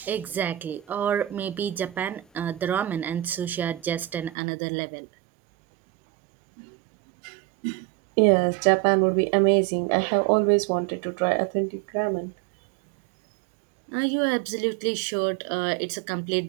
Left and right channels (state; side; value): drops out; left; at 4.4 s